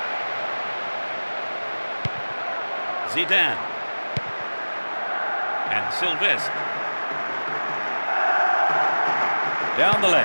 Zidane. And Sylvestre. Down the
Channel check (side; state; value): both; inverted; correlation -1.00